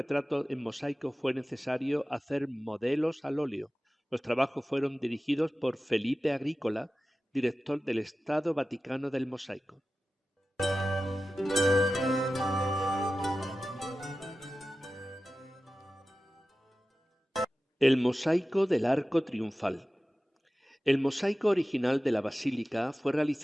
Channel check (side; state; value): both; normal; correlation 0.95